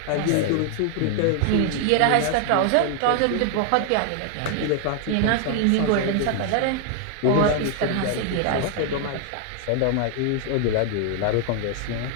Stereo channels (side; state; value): both; different; correlation 0.00